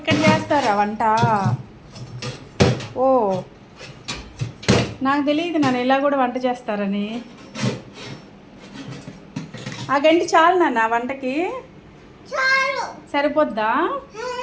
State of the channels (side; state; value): both; identical; correlation 1.00